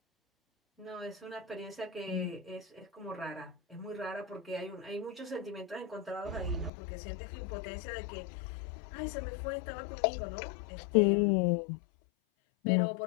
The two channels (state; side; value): drops out; right; at 6.7 s